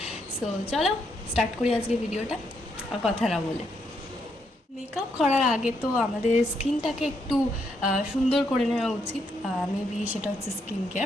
সো চলো স্টার্ট করি আজকে ভিডিওটা, আর কথা না বলে। মেকআপ করার আগে তো আমাদের স্কিনটাকে একটু সুন্দর করে নেওয়া উচিত। মেবি সেটা হচ্ছে স্কিন কেয়ার,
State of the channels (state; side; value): normal; both; correlation 0.77